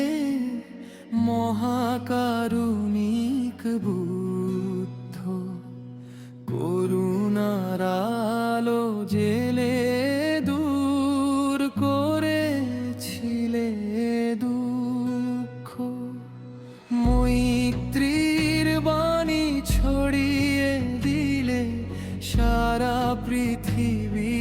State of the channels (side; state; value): both; identical; correlation 1.00